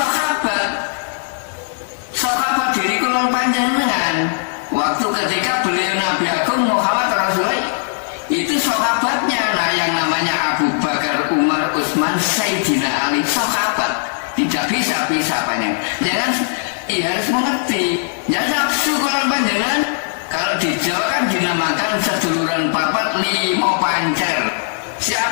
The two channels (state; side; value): silent; right; digital silence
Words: diri kulul panjenengan waktu ketika beliau Nabi Agung Muhammad Rasulullah, itu sahabatnya. Nah, yang namanya Abu Bakar, Umar, Utsman, Sayyidina Ali, sahabat. Tidak bisa banyak. Jangan, harus mengerti. Jangan nafsu kulon panjenengan. Kalau di Jawa kan dinamakan seduluran papat 5 pancer.